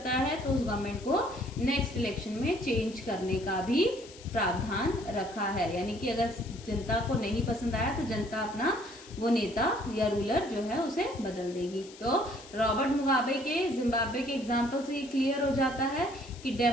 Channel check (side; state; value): left; noise; hiss, 19 dB below the sound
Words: है तो उस गवर्नमेंट को नेक्स्ट इलेक्शन में चेंज करने का भी प्रावधान रखा है। यानी कि अगर जनता को नहीं पसंद आया तो जनता अपना वो नेता या रूलर जो है उसे बदल देगी। तो रॉबर्ट मुगाबे के जिम्बाब्वे के एग्जाम्पल से ये क्लियर हो जाता है कि